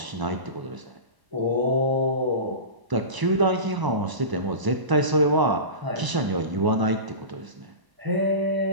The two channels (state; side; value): late; left; 1.0 ms